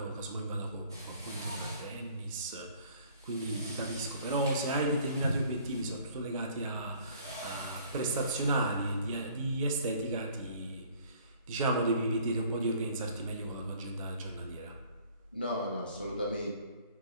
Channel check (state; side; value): inverted; both; correlation -0.55